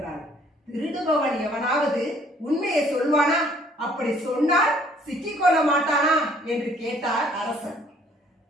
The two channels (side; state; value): both; normal; correlation 0.60